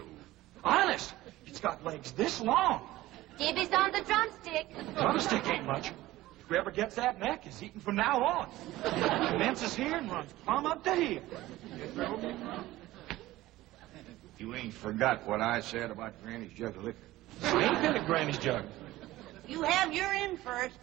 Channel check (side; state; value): left; quieter; 16.8 dB